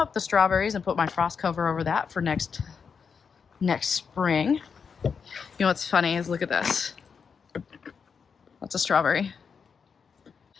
the strawberries and put my frost cover over that for next spring. You know what's funny is, look at this. That's a strawberry.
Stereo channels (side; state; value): right; quieter; 6.1 dB